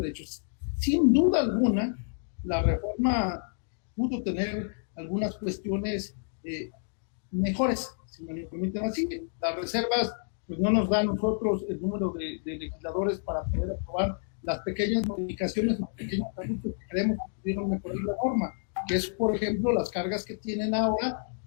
Sin duda alguna, la reforma pudo tener algunas cuestiones mejores, si me lo permiten así. Las reservas pues no nos da a nosotros el número de legisladores para poder aprobar las pequeñas modificaciones, los pequeños ajustes que creemos que pudieron mejorar la norma, que es, por ejemplo, las cargas que tienen ahora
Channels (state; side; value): silent; right; digital silence